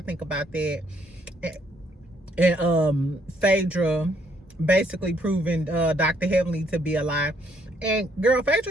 think about that. And Phaedra basically proving Dr. Heavenly to be a lie. And girl,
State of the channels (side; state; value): both; normal; correlation 0.69